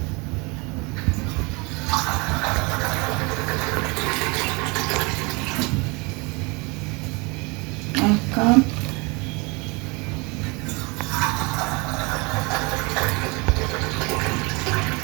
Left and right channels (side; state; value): left; quieter; 27.9 dB